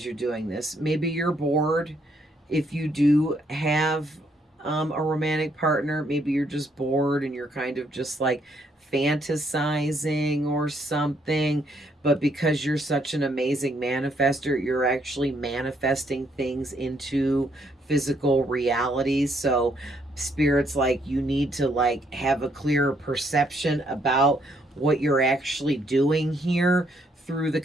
you're doing this. Maybe you're bored. If you do have a romantic partner, maybe you're just bored and you're kind of just like fantasizing or something. But because you're such an amazing manifester, you're actually manifesting things into physical reality. So Spirit's like, you need to like have a clearer perception about what you're actually doing here, through the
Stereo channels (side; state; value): both; normal; correlation 0.71